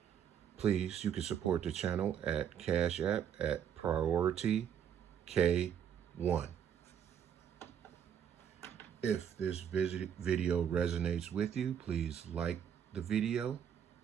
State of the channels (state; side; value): quieter; left; 8.7 dB